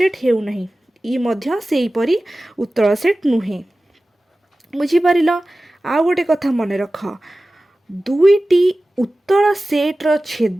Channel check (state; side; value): normal; both; correlation 0.96